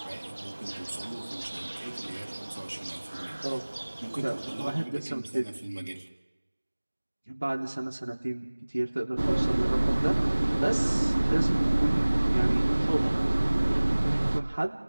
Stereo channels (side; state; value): both; inverted; correlation -1.00